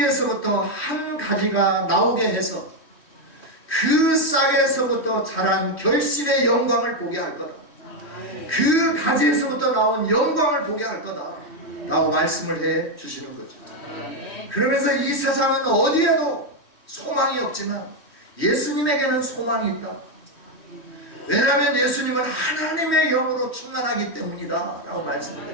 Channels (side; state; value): right; late; 3.1 ms